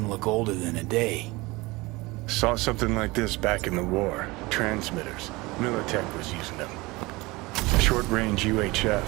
look older than a day. Saw something like this back in the war. Transmitters. Militech was using them. Short-range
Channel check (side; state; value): left; quieter; 22.7 dB